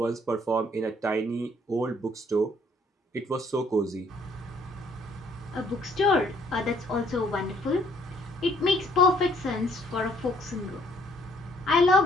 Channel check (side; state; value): both; normal; correlation 0.64